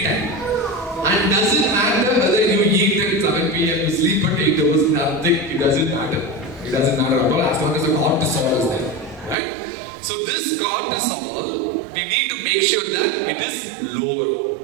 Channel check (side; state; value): left; drops out; at 9.3 s